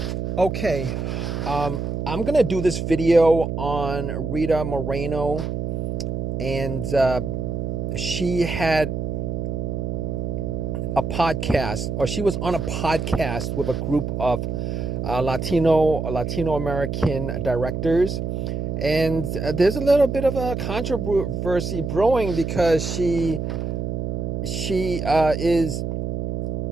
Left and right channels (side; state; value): right; noise; hum, 3 dB below the sound